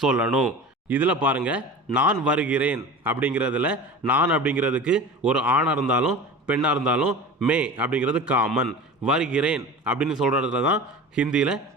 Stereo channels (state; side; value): normal; both; correlation 0.34